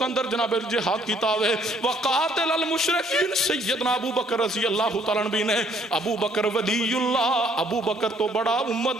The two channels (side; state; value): both; normal; correlation 0.64